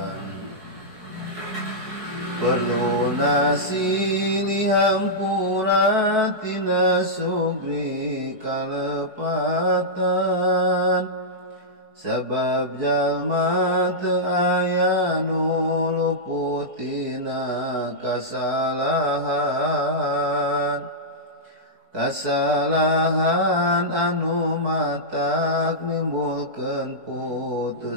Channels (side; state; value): left; late; 4.6 ms